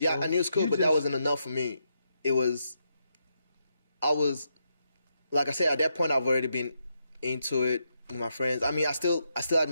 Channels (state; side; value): inverted; both; correlation -0.81